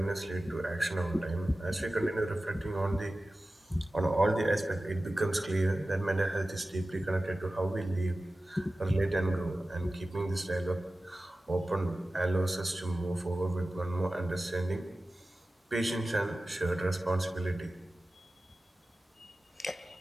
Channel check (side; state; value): both; normal; correlation 0.95